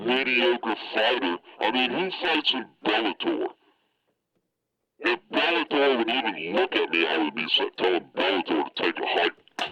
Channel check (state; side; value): identical; both; correlation 1.00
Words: fighter. I mean, who fights in Bellator? If Bellator would even look at me, I would be telling Bellator to take a hike